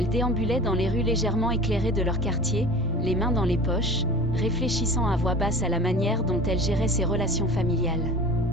déambulait dans les rues légèrement éclairées de leur quartier, les mains dans les poches, réfléchissant à voix basse à la manière dont elle gérait ses relations familiales.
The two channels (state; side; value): normal; both; correlation 0.38